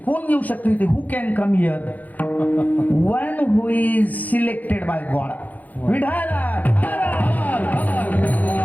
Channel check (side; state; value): right; late; 0.080 ms